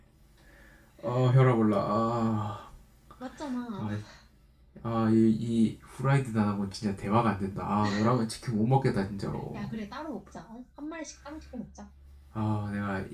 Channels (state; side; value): identical; both; correlation 1.00